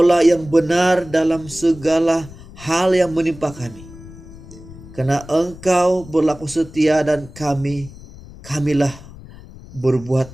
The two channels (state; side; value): noise; left; rumble, 18 dB below the sound